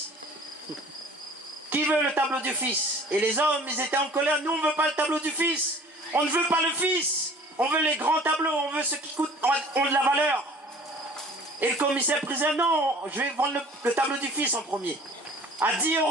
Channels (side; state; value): both; normal; correlation 0.48